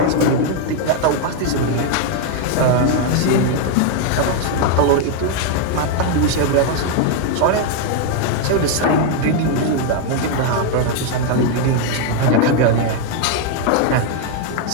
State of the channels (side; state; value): both; different; correlation 0.01